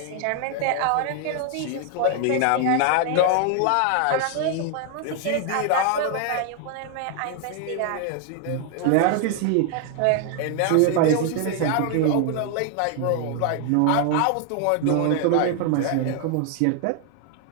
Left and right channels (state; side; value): different; both; correlation 0.00